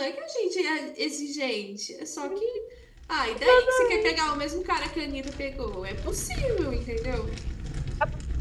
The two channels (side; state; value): both; identical; correlation 1.00